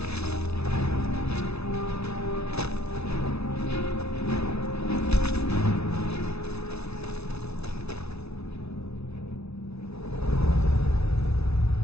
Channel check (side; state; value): right; late; 0.80 ms